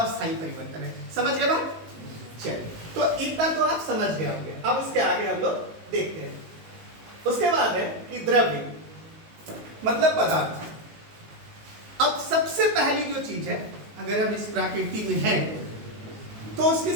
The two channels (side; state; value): left; late; 19 ms